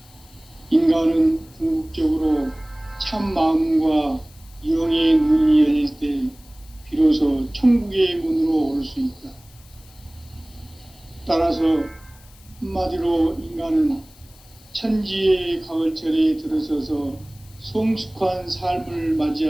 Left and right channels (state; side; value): noise; left; hiss, 26 dB below the sound